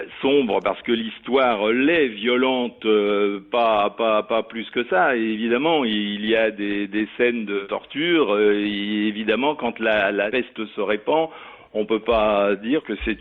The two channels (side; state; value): both; identical; correlation 1.00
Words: Sombre parce que l'histoire l'est, violente pas plus que ça. Et évidemment, il y a des scènes de torture. Et évidemment, quand la peste se répand, on peut pas dire que